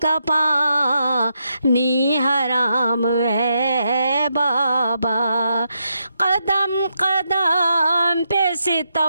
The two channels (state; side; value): inverted; both; correlation -0.82